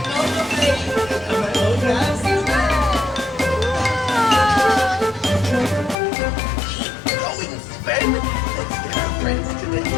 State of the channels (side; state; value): right; drops out; at 6.0 s